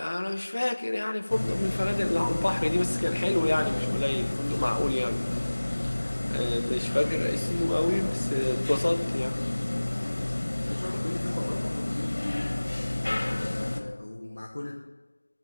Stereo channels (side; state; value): both; inverted; correlation -1.00